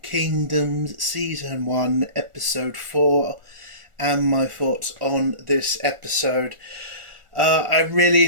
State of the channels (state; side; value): late; left; 1.4 ms